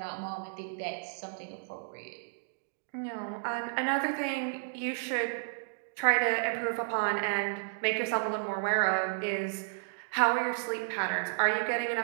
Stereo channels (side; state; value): left; silent; digital silence